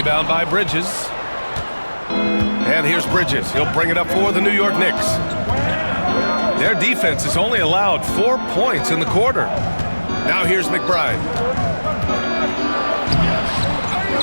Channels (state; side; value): inverted; both; correlation -1.00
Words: by Bridges. And here's Bridges. He'll bring it up for the New York Knicks. Their defense has only allowed 4 points in the quarter. Now here's McBride.